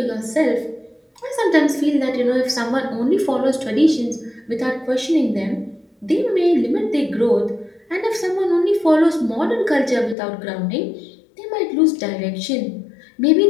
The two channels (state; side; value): drops out; right; at 10.2 s